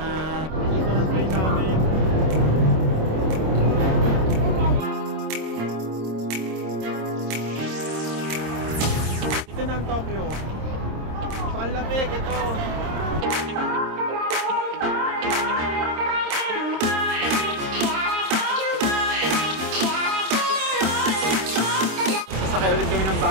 Ito ng train namin. Ito na ang Tokyo. So, ang lamig ito. Sasakay ulit kami ng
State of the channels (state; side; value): late; left; 26 ms